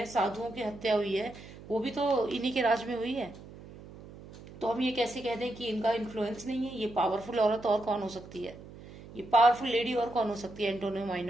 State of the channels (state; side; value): noise; right; hum, 17 dB below the sound